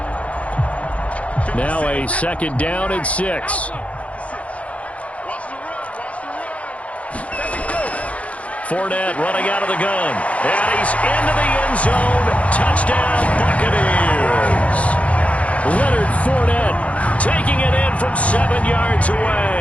Now a 2nd down and 6. Fournette running out of the gun. And he's into the end zone. Touchdown, Buccaneers. Leonard Fournette taking it in from 7 yards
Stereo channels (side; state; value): right; late; 0.064 ms